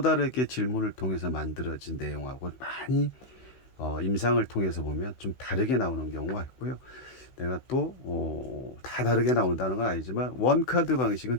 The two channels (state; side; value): late; right; 15 ms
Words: 다르게 질문을 통해서 만들어진 내용하고 많이 임상을 통해서 보면 좀 다르게 나오는 경우가 있고요. 내가 또 다 다르게 나온다는 건 아니지만 원카드 방식은